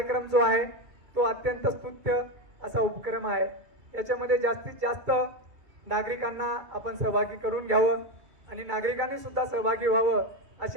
जो आहे तो अत्यंत स्तुत्य असा उपक्रम आहे. याच्यामध्ये जास्तीत जास्त नागरिकांना आपण सहभागी करून घ्यावं आणि नागरिकांनी सुद्धा सहभागी व्हावं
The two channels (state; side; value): late; left; 2.3 ms